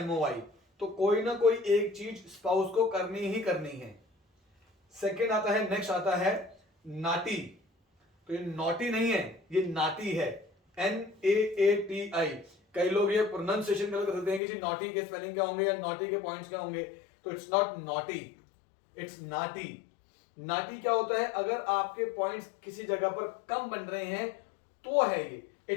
तो कोई ना कोई एक चीज स्पाउस को करनी ही करनी है। सेकंड आता है, नेक्स्ट आता है नाटी। तो ये नॉटी नहीं है, ये नाटी है, NAATI। कई लोग ये प्रोनाउंसिएशन गलत करते हैं कि जी नॉटी के स्पेलिंग क्या होंगे या नॉटी के पॉइंट्स क्या होंगे, तो इट्स नॉट नॉटी, इट्स नाटी। नाटी क्या होता है, अगर आपके पॉइंट्स किसी जगह पर कम बन रहे हैं तो है ये,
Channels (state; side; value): drops out; right; at 14.4 s